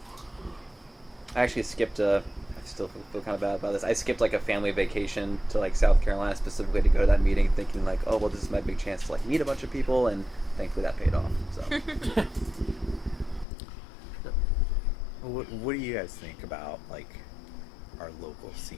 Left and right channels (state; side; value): drops out; right; at 13.5 s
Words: I actually skipped I still feel kind of bad about this. I skipped like a family vacation to like South Carolina specifically to go to that meeting, thinking like, oh well, this is my big chance to like meet a bunch of people, and thankfully that paid off. So What do you guys think about like our local